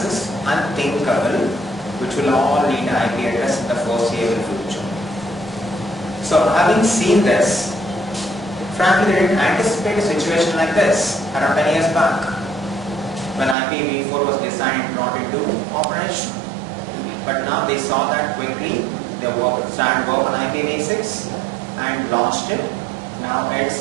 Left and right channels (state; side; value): drops out; left; at 13.6 s